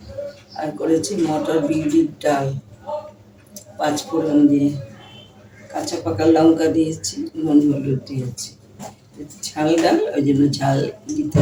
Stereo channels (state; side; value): identical; both; correlation 1.00